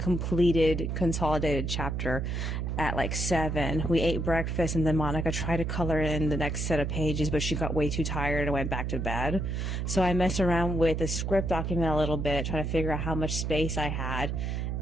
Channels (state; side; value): noise; right; hum, 1 dB below the sound